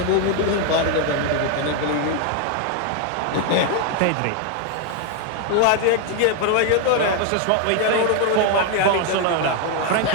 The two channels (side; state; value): both; different; correlation 0.01